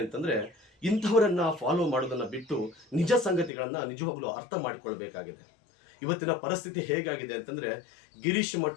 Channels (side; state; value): right; drops out; at 3.5 s